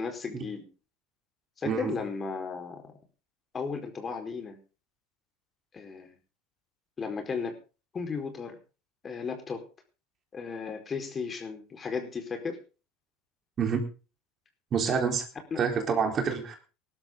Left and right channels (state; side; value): normal; both; correlation 0.63